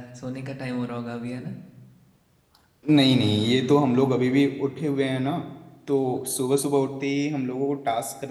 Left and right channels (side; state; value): both; identical; correlation 1.00